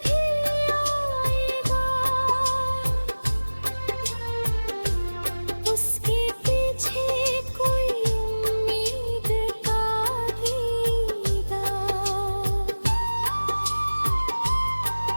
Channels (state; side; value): inverted; both; correlation -1.00